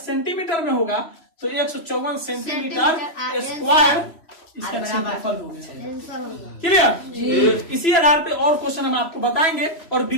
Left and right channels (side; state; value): right; late; 3.0 ms